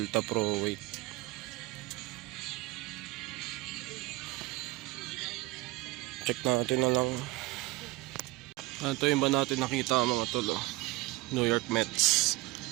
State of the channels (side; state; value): left; quieter; 21.0 dB